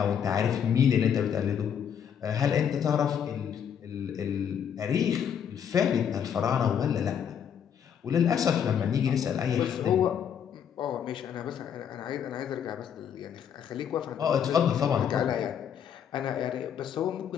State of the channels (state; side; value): quieter; right; 8.3 dB